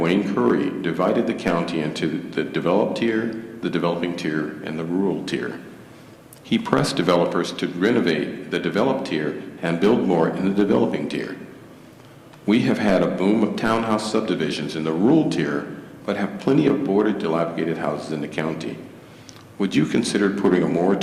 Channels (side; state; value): both; identical; correlation 1.00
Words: Curry, divided the county into the developed tier, the developing tier, and the rural tier. He pressed developers to renovate the developed tier and build more in the developing tier. We have had a boom of townhouse subdivisions in the rural tier, but have plenty of boarded, dilapidated houses in the county. Would you consider putting a